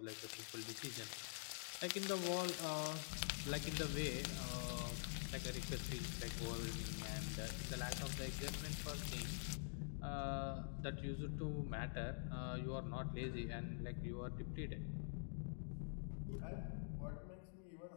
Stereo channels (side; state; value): right; silent; digital silence